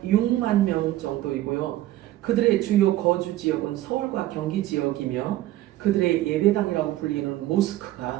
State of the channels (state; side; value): quieter; left; 15.2 dB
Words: 6만 명 정도이고요. 그들의 주요 거주 지역은 서울과 경기 지역이며 그들의 예배당이라고 불리는